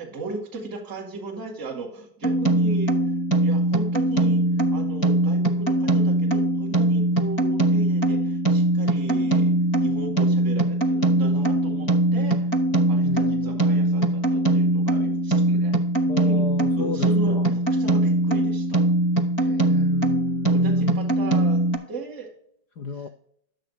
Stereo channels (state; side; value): late; right; 4.4 ms